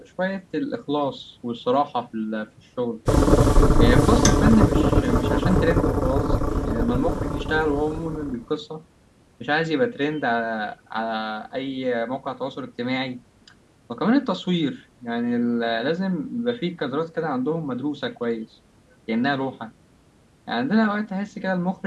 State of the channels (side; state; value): both; identical; correlation 1.00